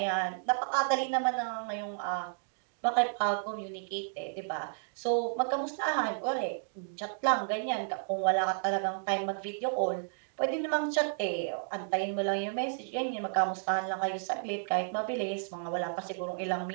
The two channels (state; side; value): silent; left; digital silence